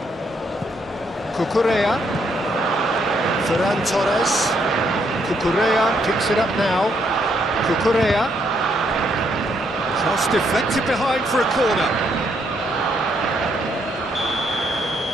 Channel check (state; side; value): normal; both; correlation 0.73